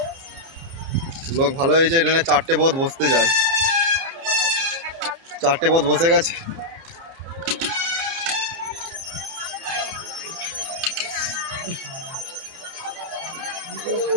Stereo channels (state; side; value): late; left; 30 ms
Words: লোক ভালো হয়েছে, এখানে 4টে বোধ বসতে যায়, 4টে বোধ বসে গেছে।